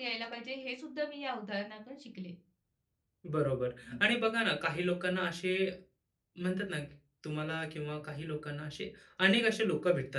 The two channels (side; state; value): both; identical; correlation 1.00